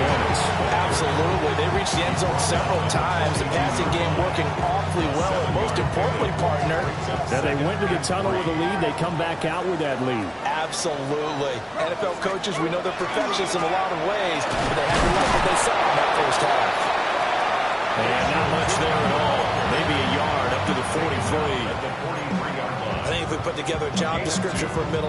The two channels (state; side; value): identical; both; correlation 1.00